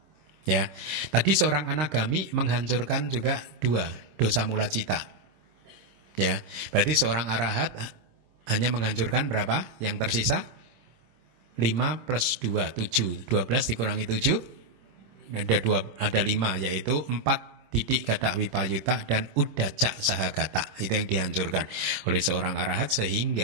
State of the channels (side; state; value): left; late; 26 ms